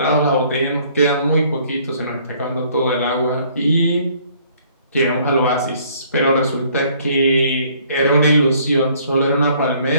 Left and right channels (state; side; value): inverted; both; correlation -0.60